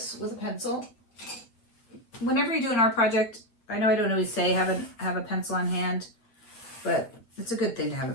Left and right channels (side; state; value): right; late; 8.7 ms